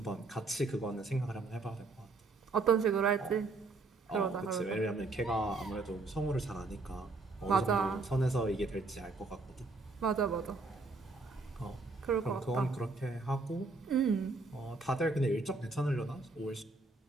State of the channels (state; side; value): quieter; left; 3.5 dB